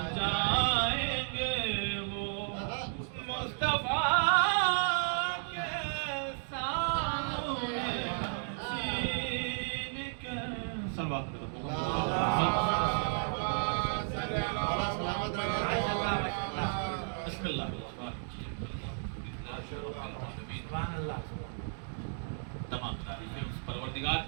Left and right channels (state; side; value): silent; left; digital silence